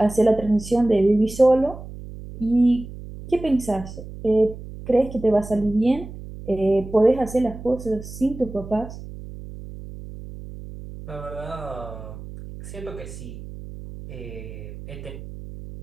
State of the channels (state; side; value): noise; right; hum, 13 dB below the sound